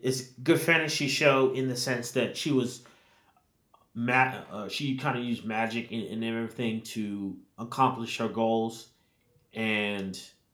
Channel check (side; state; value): both; identical; correlation 1.00